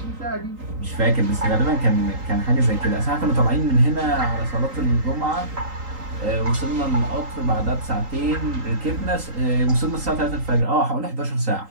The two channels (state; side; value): late; left; 3.8 ms